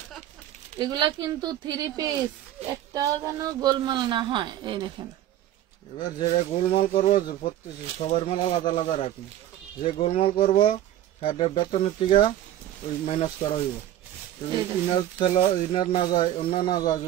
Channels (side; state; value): left; quieter; 12.4 dB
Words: এগুলা কিন্তু 3 পিস, একটাও যেন গোলমাল না হয়। এই দেখেন, এবার যেটা গোলমাল করবো সবার মাল আলাদা আলাদা রাখি। যে গোলমাল করবো তাদের বেতনের থেকে ওই মাইনাস করা হইব। ইনার না যায়, অন্য না যায়,